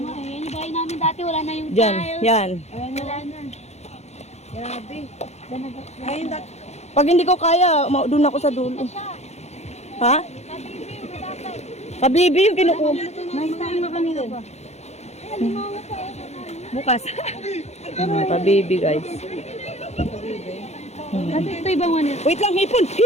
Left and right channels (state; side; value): late; right; 0.32 ms